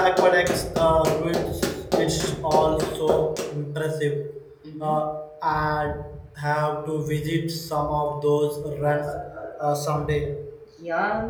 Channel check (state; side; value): identical; both; correlation 1.00